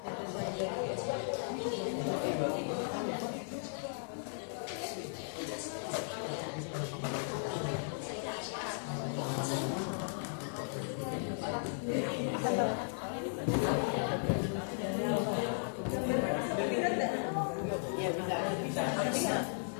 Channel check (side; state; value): right; silent; digital silence